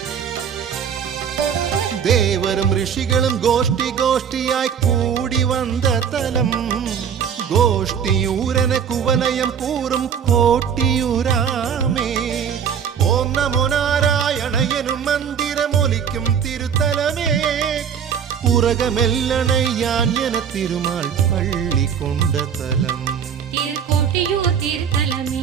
தேவரும் ரிஷிகளும் கோஷ்டி கோஷ்டியாய் கூடி வந்த தலம். கோஷ்டியூரன குவலயம் கூறும் கோட்டியூராமே. ஓம் நமோ நாராயண எனும் மந்திரம் ஒலிக்கும் திருத்தலமே. உலகமெல்லனை யான் என திருமால் பள்ளி கொண்ட தலம். திருக்கோட்டியூர்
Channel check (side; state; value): left; quieter; 7.7 dB